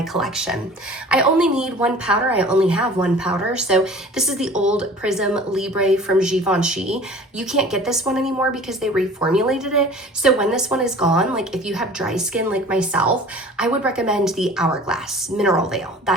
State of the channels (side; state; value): both; normal; correlation 0.44